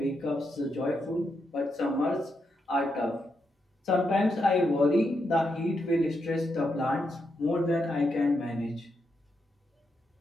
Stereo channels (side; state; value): both; normal; correlation 0.82